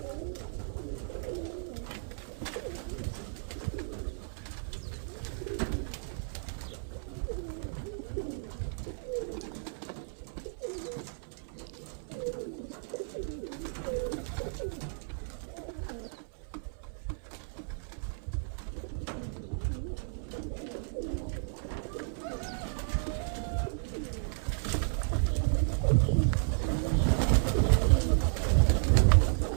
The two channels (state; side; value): silent; left; 56 dB below the other